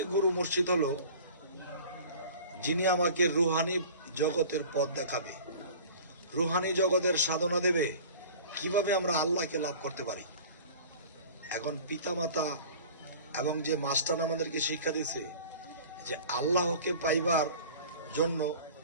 গুরু মুর্শিদ হলো যিনি আমাকে রুহানি জগতের পথ দেখাবে, রুহানি জগতের সাধনা দেবে, কিভাবে আমরা আল্লাহকে লাভ করতে পারি। এখন পিতামাতা এবং যে মাস্টার আমাদেরকে শিক্ষা দিয়েছে যে আল্লাহকে পাইবার জন্য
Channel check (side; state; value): both; inverted; correlation -0.42